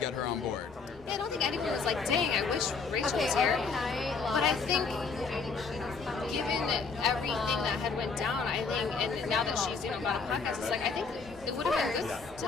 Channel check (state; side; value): quieter; right; 4.9 dB